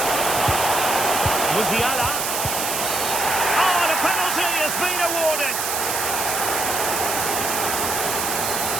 Musiala. Oh, and a penalty has been awarded.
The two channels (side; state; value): right; noise; hiss, 1 dB below the sound